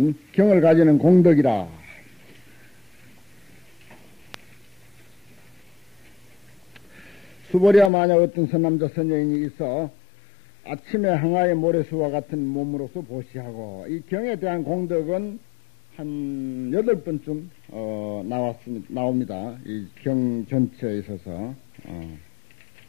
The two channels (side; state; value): right; drops out; at 7.9 s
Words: 경을 가지는 공덕이라. 수보리야 만약 어떤 선남자 선여인이 있어 아침에 항아의 모래수와 같은 몸으로서 보시하고, 이 경에 대한 공덕은 한 8번쯤 나옵니다. 이 경 전체에 있어서